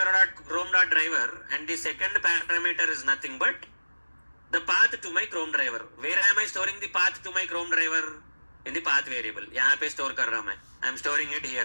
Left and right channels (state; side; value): inverted; both; correlation -1.00